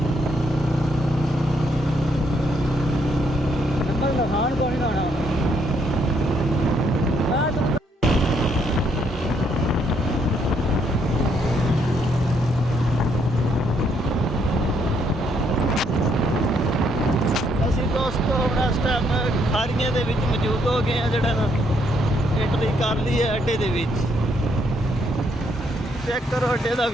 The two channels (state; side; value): normal; both; correlation 0.72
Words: ਨੰਬਰ ਲਖਾਣ ਕੋਈ ਨਾ ਹੋਣਾ ਮੈਂ ਤੂੰ दोस्तों हम इस टाइम खारियां दे विच मौजूद हो गए हैं जड़ा ना एंट्री कर ली है अड्डे दे विच चेक करो अड्डे दा